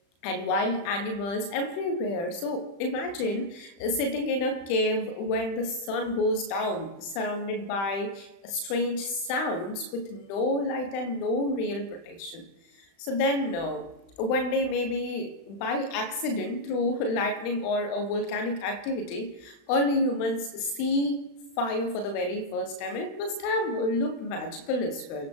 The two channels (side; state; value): right; late; 35 ms